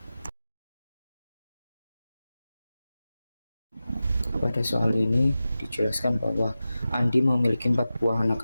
Pada soal ini dijelaskan bahwa Andi memiliki 4 buah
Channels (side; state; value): both; inverted; correlation -0.94